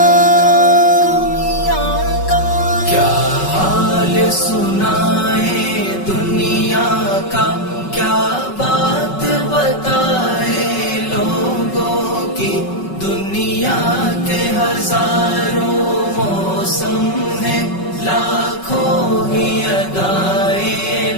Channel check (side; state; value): right; late; 5.3 ms